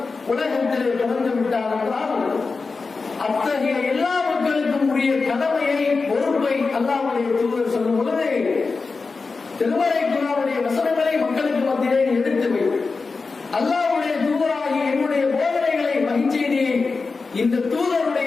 உலகத்திலே பிறந்து விட்டார் என்றால் அத்தகைய எல்லா மக்களுக்கும் உரிய கடமையை பொறுப்பை அல்லாஹ்வுடைய தூதர் சொல்லும் பொழுது திருமறை குர்ஆனுடைய வசனங்களை மக்களுக்கு மத்தியிலே எடுத்து வை, அல்லாஹ்வுடைய தூதராகிய என்னுடைய போதனைகளை மகிழ்ச்சியை இந்த தூதருடைய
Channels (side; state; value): right; quieter; 4.3 dB